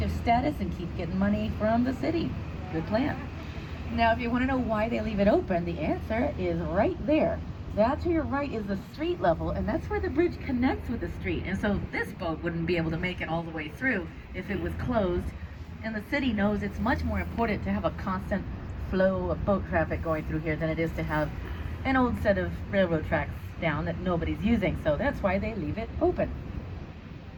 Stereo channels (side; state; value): both; identical; correlation 1.00